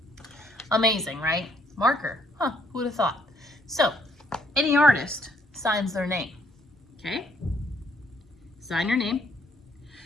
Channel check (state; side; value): normal; both; correlation 0.68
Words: Amazing, right? Marker, huh, who would have thought? So, any artist signs their name, okay? Sign your name.